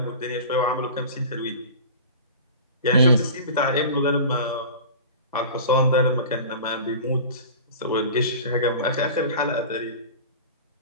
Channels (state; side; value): inverted; both; correlation -0.37